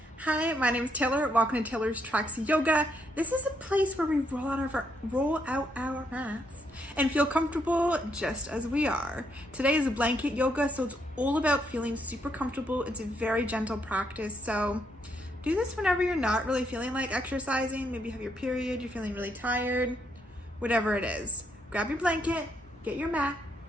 Hi, my name is Taylor. Welcome to Taylor's Tracks Yoga. This is a place where we roll out our mats and feel comfortable just as we are. Today is a blanket yoga, so it's all about feeling super comfortable. It's a very gentle practice, so do this whenever you're not really feeling like exercising. Maybe you have your period, you're feeling really tired, whatever it is. Grab your blanket, get your mat,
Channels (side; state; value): both; normal; correlation 0.76